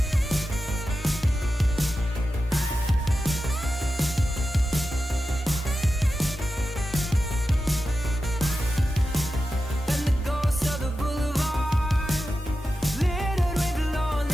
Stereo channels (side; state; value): both; normal; correlation 0.92